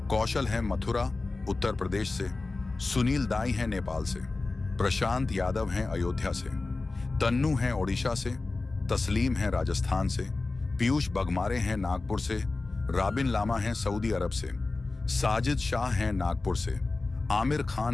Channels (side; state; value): right; quieter; 3.5 dB